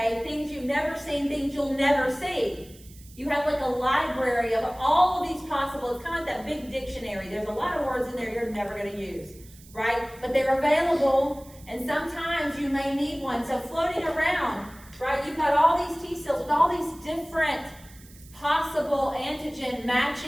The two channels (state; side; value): noise; right; hiss, 23 dB below the sound